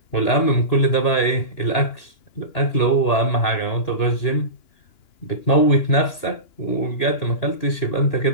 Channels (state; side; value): late; right; 2.9 ms